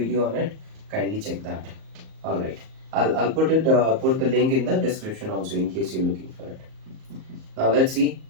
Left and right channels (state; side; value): late; left; 38 ms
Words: on it. Kindly check that. All right. I'll put it put the link in the description also in case you're looking for it. Now let's see.